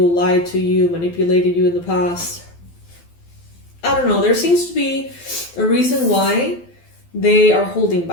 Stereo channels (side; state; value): right; late; 12 ms